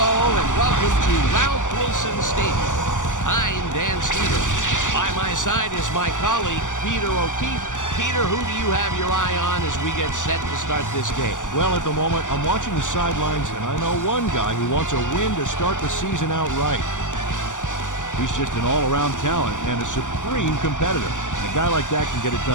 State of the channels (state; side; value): late; right; 0.86 ms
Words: and welcome to Ralph Wilson Stadium. I'm Dan Stevens. By my side is my colleague, Peter O'Keefe. Peter, who do you have your eye on as we get set to start this game? Well, at the moment, I'm watching the sidelines, and I know one guy who wants a win to start the season out right. He's just an all-around talent and a supreme competitor. And a guy like that can get it